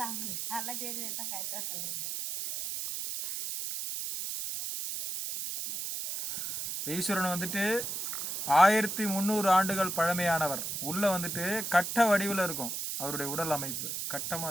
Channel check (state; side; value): noise; right; hiss, 4 dB below the sound